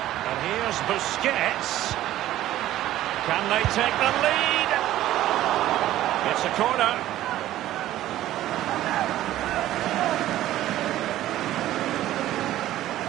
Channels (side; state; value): left; quieter; 14.0 dB